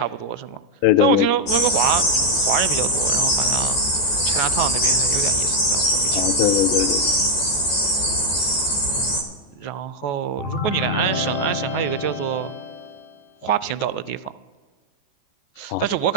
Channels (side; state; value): right; late; 14 ms